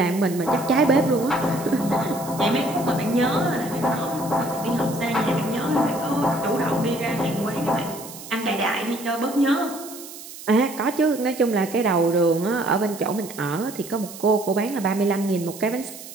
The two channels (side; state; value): right; noise; hiss, 14 dB below the sound